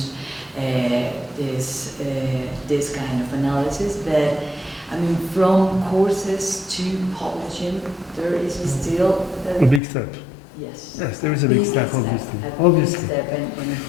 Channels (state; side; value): drops out; right; at 9.8 s